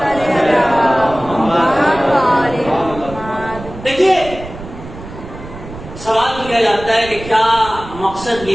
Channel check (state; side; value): noise; right; rumble, 14 dB below the sound